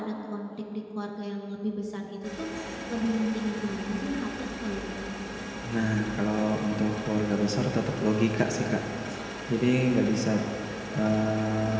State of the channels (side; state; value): both; identical; correlation 1.00